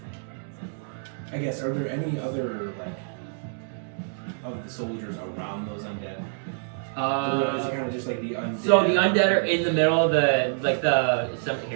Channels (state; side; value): silent; left; digital silence